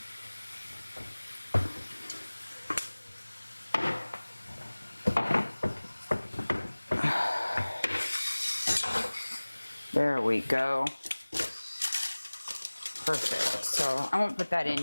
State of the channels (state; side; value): inverted; both; correlation -1.00